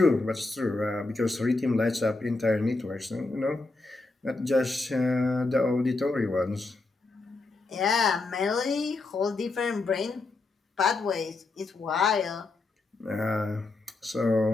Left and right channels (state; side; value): quieter; right; 3.4 dB